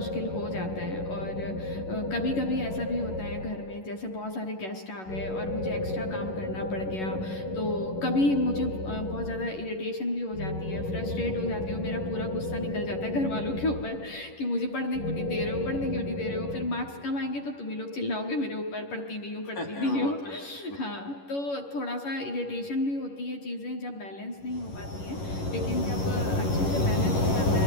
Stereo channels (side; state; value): right; late; 11 ms